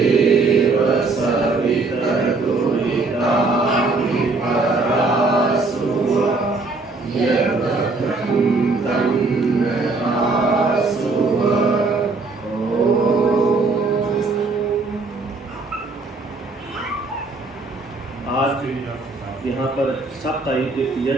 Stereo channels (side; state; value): left; quieter; 3.7 dB